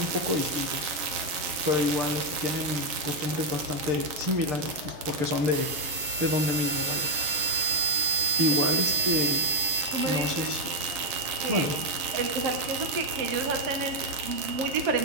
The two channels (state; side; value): late; left; 7.3 ms